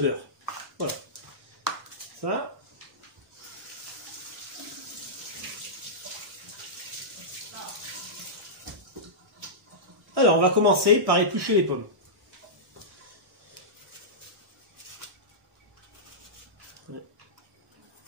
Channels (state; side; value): normal; both; correlation -0.14